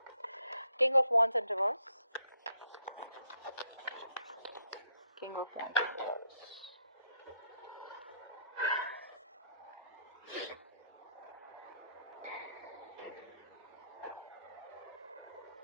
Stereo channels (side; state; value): both; inverted; correlation -0.74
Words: King of Wands in reverse. King of Wands in reverse.